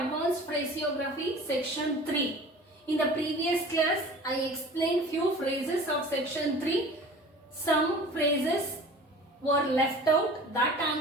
Phraseography Section 3. In the previous class, I explained few phrases of Section 3. Some phrases were left out that I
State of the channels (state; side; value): normal; both; correlation 0.42